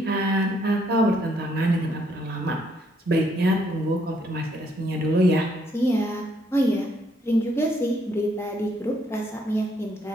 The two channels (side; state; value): both; normal; correlation 0.71